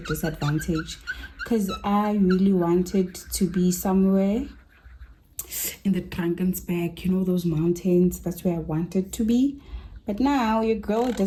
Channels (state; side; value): identical; both; correlation 1.00